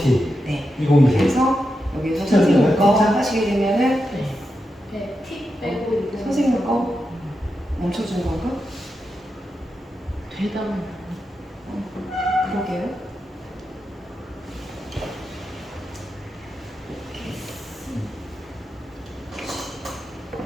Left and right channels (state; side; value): normal; both; correlation 0.88